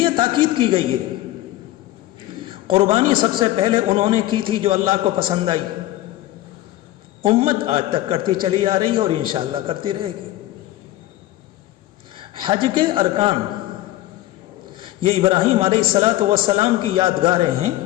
تاکید کی گئی ہے۔ قربانی سب سے پہلے انہوں نے کی تھی جو اللہ کو پسند آئی، امت آج تک کرتی چلی آ رہی ہے اور انشاءاللہ کرتی رہے گی۔ حج کے ارکان یہ ابراہیم علیہ الصلاۃ والسلام کی یادگاریں ہیں۔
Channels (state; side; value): quieter; right; 15.5 dB